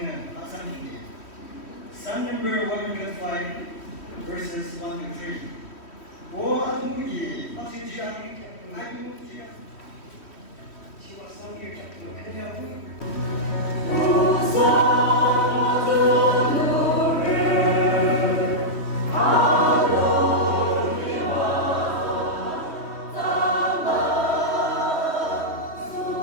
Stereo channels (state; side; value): late; right; 3.1 ms